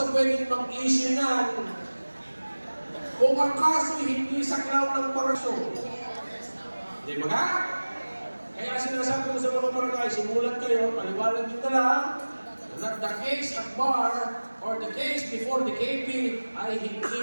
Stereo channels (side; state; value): both; inverted; correlation -1.00